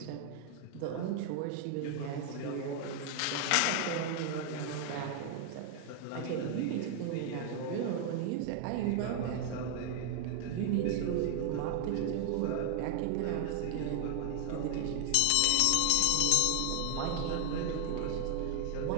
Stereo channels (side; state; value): both; different; correlation 0.00